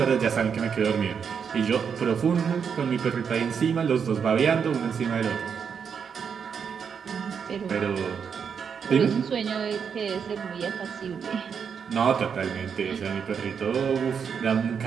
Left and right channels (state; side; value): quieter; left; 6.8 dB